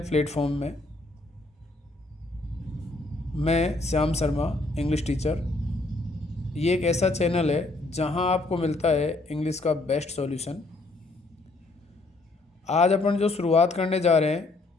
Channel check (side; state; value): right; quieter; 3.1 dB